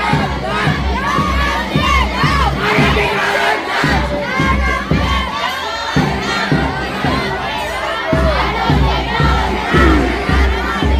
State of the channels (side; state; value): both; identical; correlation 1.00